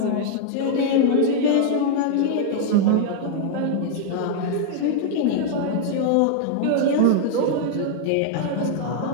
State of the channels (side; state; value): both; different; correlation 0.00